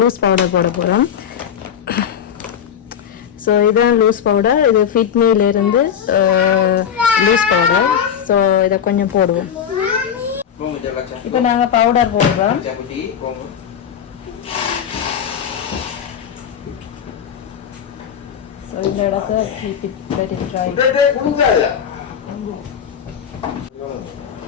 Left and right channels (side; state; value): right; quieter; 8.4 dB